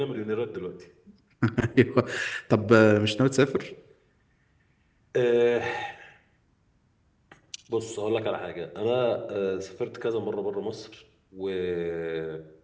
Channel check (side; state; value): both; identical; correlation 1.00